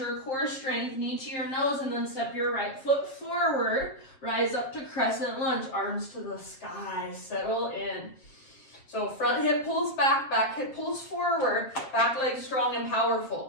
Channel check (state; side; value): late; right; 7.5 ms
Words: core strength, knee to your nose, and then step your right foot forward. Rise up to Crescent Lunge, arms to the sky. Settle in. So front hip pulls back, back hip pulls forward, back leg strong and